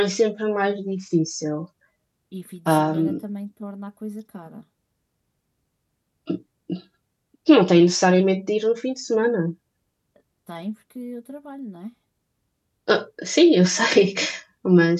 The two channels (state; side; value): identical; both; correlation 1.00